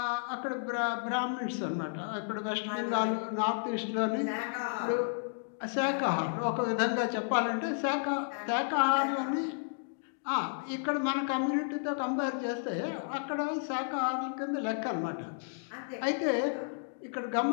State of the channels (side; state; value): right; silent; digital silence